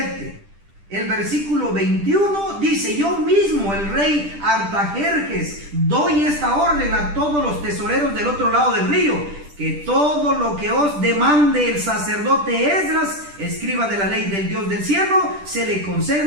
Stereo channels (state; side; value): late; left; 10 ms